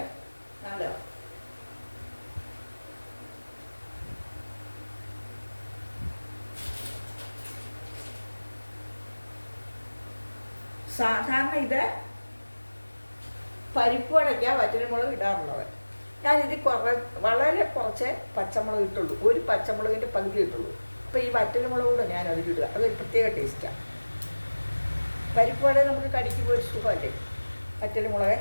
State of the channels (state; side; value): inverted; both; correlation -1.00